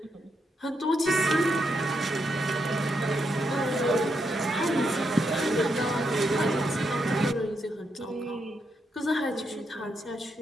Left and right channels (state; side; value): normal; both; correlation 0.81